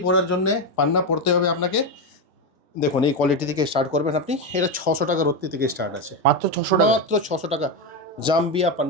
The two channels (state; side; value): normal; both; correlation 0.10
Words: পড়ার জন্যে পান্না পড়তে হবে আপনাকে। দেখুন এই কোয়ালিটি থেকে স্টার্ট করবেন আপনি। এটা 600 টাকা রত্তি থেকে স্টার্ট আছে, মাত্র 600 টাকা, মাত্র 600 টাকা। জাম্বিয়া